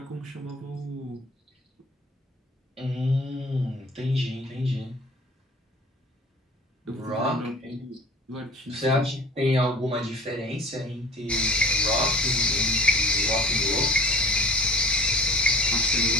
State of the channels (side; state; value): both; normal; correlation 0.45